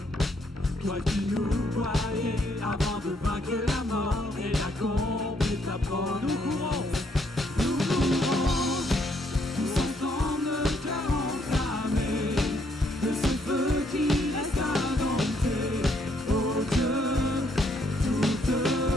Toi qui nous voyais avant de vaincre la mort et d'accomplir ta promesse. Nous courons, tous ensemble, le cœur enflammé, de ce feu qui reste indompté. Oh Dieu, toute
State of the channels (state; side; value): normal; both; correlation 0.71